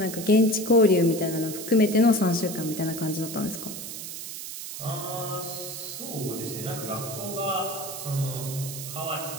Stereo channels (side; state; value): right; noise; hiss, 8 dB below the sound